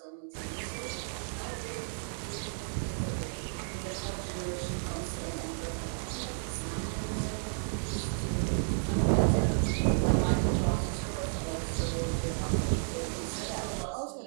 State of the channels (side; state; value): left; silent; 56 dB below the other